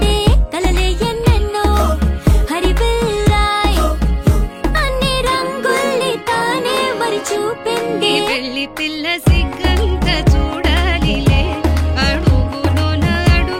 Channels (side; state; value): both; identical; correlation 1.00